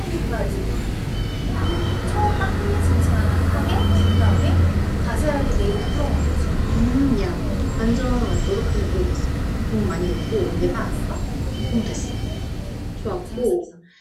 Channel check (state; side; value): identical; both; correlation 1.00